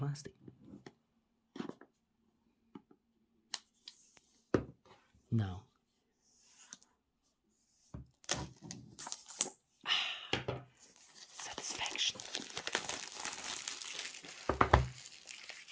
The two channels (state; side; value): identical; both; correlation 1.00